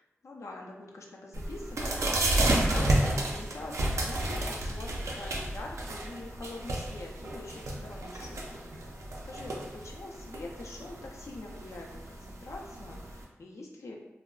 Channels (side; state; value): both; normal; correlation 0.73